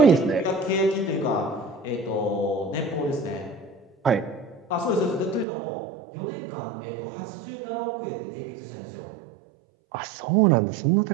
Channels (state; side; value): drops out; left; at 5.5 s